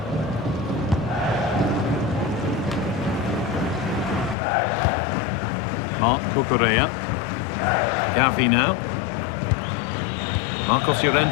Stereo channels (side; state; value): right; drops out; at 4.4 s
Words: Marc Cucurella. Gavi now. Marcos